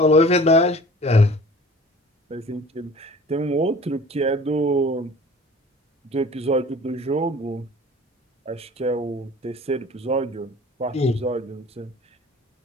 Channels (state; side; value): normal; both; correlation 0.45